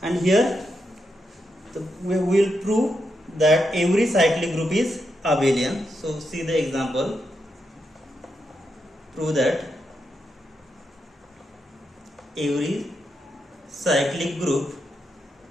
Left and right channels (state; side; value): normal; both; correlation 0.84